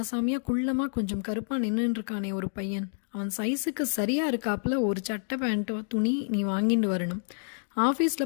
குள்ளமா கொஞ்சம் கருப்பா நின்றுட்டு இருக்கானே ஒரு பையன், அவன் சைஸுக்கு சரியா இருக்காப்புல ஒரு சட்டை பேண்ட்டோ துணி நீ வாங்கிட்டு வரணும்.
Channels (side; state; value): right; silent; digital silence